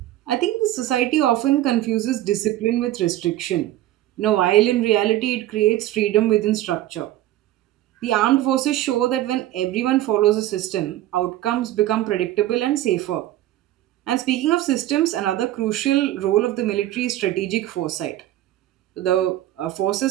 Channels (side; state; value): left; quieter; 14.3 dB